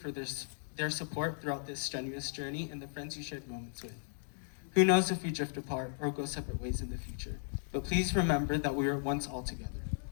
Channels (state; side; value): silent; right; digital silence